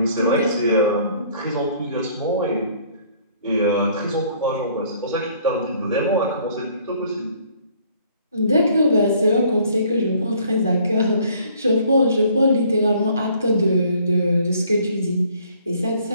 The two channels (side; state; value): both; inverted; correlation -0.59